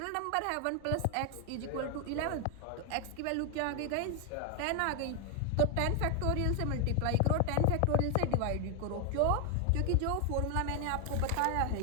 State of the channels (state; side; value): different; both; correlation 0.00